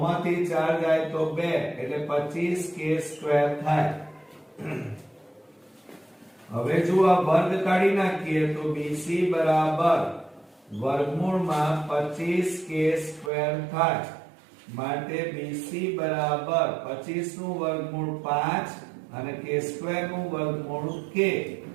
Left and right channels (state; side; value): drops out; left; at 13.3 s